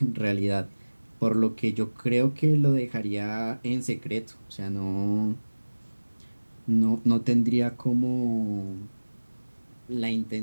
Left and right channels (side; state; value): both; inverted; correlation -1.00